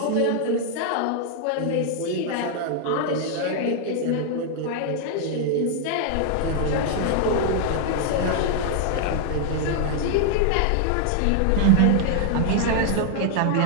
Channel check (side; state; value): both; different; correlation 0.00